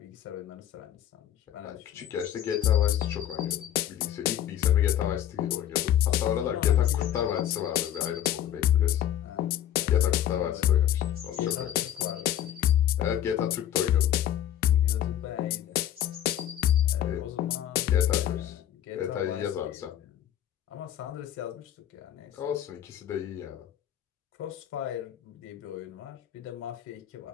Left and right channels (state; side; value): quieter; right; 11.1 dB